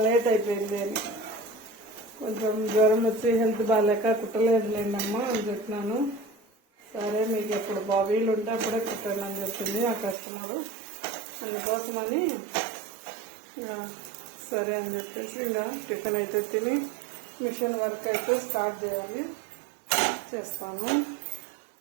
లేట్ అయిపోయింది అని. కొంచెం జ్వరం వచ్చి హెల్త్ బాగాలేక కుట్టలేదులేండమ్మా అని చెప్పినాను. సరే మీకు ఎప్పుడు వీలు ఉంటే అప్పుడే కుట్టండి అని చెప్పింది ఆ కస్టమరు. అందుకోసమని సరే అని చెప్పేసి ఇంకా టిఫిన్ అయితే తిని మిషన్ వర్క్ అయితే స్టార్ట్ చేయాలి, చేస్తాను.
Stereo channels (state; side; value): drops out; left; at 10.2 s